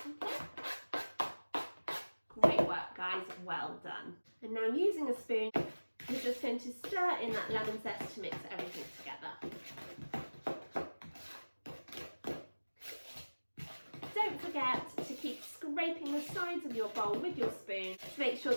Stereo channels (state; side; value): inverted; both; correlation -1.00